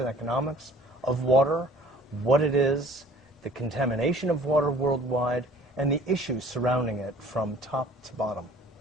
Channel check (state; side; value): normal; both; correlation 0.51